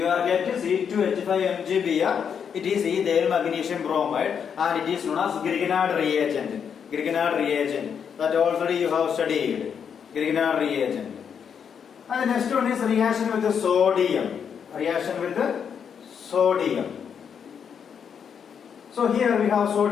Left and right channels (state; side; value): quieter; right; 7.4 dB